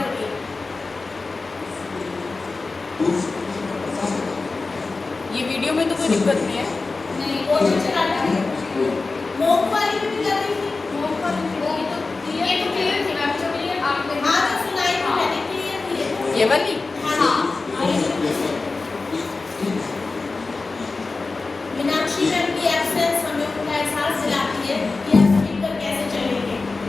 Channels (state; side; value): quieter; right; 3.8 dB